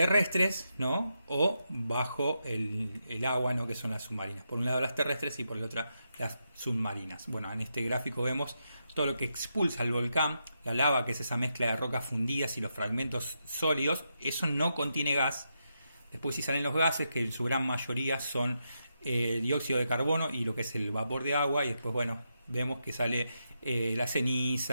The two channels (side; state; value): both; inverted; correlation -0.84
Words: ¿no? O bajo el agua, ¿no? Que son las submarinas. Por un lado las terrestres y por el otro las submarinas. Bueno, en este gráfico vemos todo lo que expulsa el volcán, la lava, que es esa mezcla de rocas fundidas y los fragmentos sólidos. Eso no contiene gas. Después sí salen los gases, que en su gran mayoría son dióxido de carbono y lo que es el vapor de agua. Y después, bueno, vemos que sale las